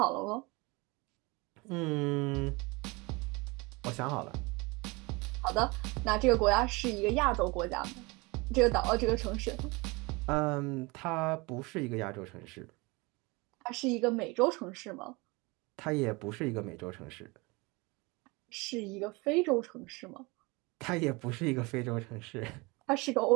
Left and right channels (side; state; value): left; quieter; 25.7 dB